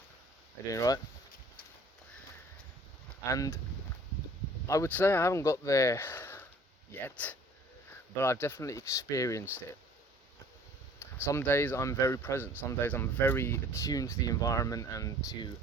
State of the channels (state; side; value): normal; both; correlation 0.53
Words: Are you doing right? And I would say I haven't got there yet, but I've definitely experienced it. Some days I'm very present, some days I'm very attuned to the environment and to